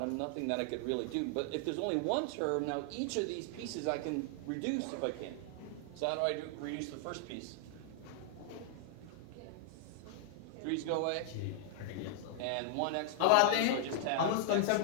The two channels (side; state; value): both; different; correlation 0.00